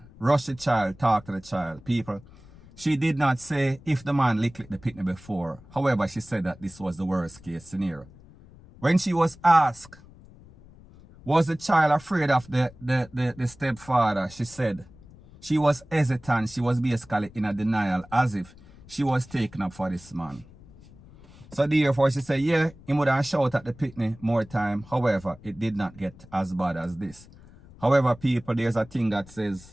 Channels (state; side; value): noise; left; rumble, 22 dB below the sound